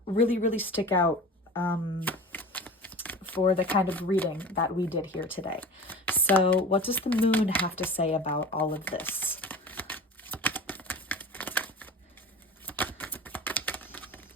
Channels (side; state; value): both; normal; correlation 0.36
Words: really, really stick out for the kind of reading that we did here today. So what does the moon have to say about all of this?